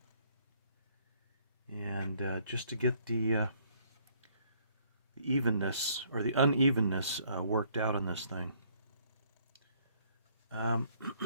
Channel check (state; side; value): inverted; both; correlation -0.65